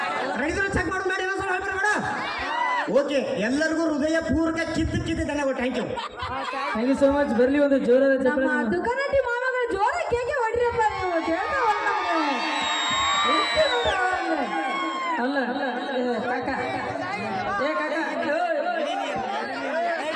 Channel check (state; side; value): identical; both; correlation 1.00